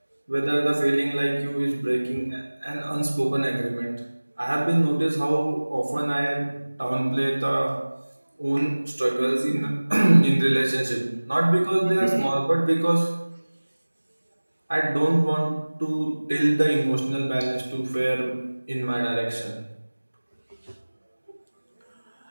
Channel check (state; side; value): inverted; both; correlation -1.00